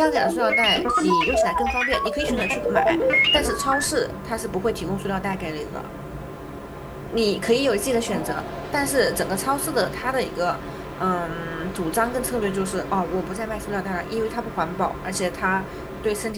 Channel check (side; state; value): both; identical; correlation 1.00